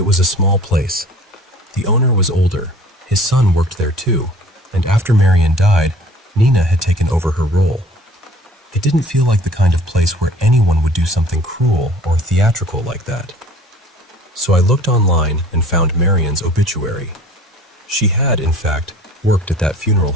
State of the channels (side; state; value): both; normal; correlation 0.50